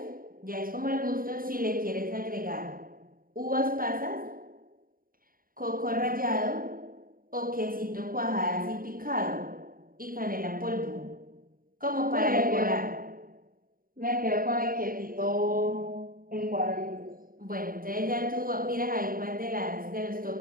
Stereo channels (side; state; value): left; late; 0.41 ms